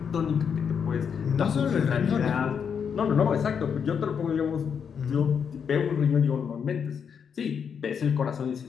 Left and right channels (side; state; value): right; quieter; 7.0 dB